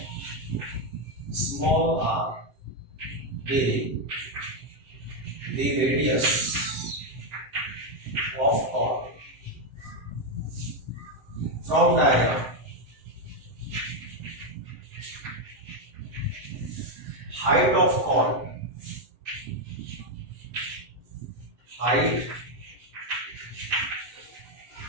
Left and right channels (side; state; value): left; late; 7.8 ms